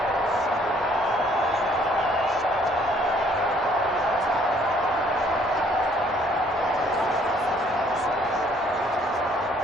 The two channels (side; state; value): both; normal; correlation 0.62